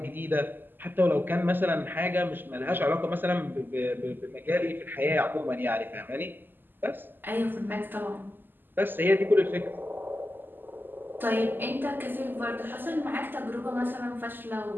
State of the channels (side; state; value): left; late; 0.092 ms